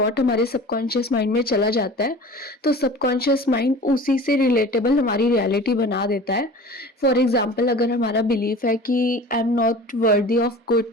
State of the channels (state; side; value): normal; both; correlation 0.40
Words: हमारे सबकॉन्शियस माइंड में चला जाता है तो सबकॉन्शियस माइंड उसी से रिलेटेबल हमारी रियलिटी बना देता है। फॉर एग्जांपल, अगर हमारा बिलीफ है कि I am not worthy of good